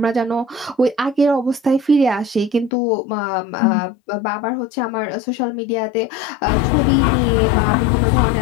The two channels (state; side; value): drops out; right; at 2.7 s